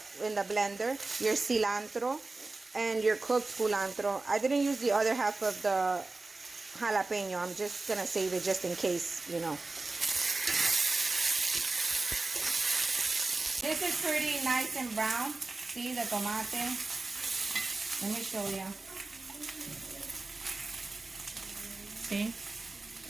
in the blender. Your cilantro and your cooked culantro. I didn't use the other half of the jalapeño. I'm just gonna save it just in case, you know. This is pretty nice and brown. See the tomate? Let me show you. See?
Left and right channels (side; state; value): left; quieter; 3.4 dB